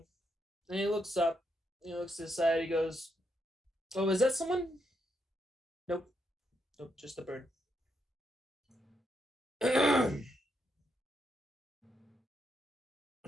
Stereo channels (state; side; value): normal; both; correlation 0.80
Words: and he looks up, he looks to the side, he goes, "Oh, is that someone?" Nope. Nope, just a bird.